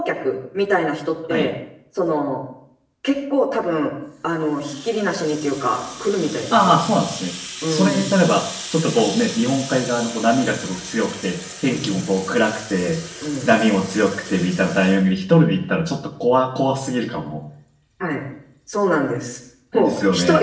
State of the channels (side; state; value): both; identical; correlation 1.00